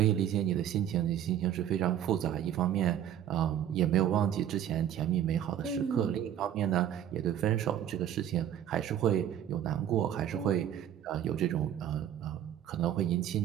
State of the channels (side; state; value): left; quieter; 10.5 dB